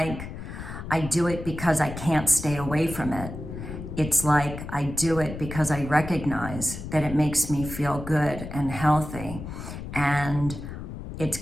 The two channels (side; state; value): left; noise; rumble, 9 dB below the sound